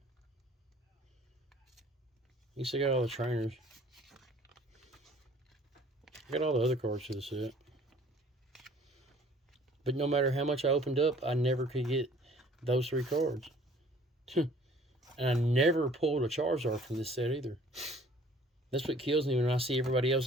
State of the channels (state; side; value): normal; both; correlation 0.54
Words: You still got all the trainers. I got all the other cards to the set. But no matter how much I opened up, I never could get those 3 cards. And I never pulled a Charizard from this set either. That's what kills me when I see everybody